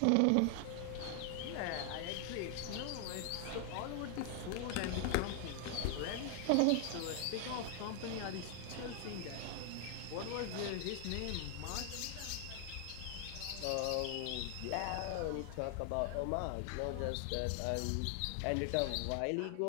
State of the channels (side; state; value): both; different; correlation 0.00